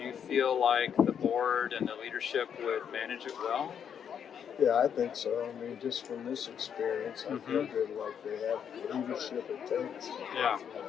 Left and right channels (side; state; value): right; quieter; 8.1 dB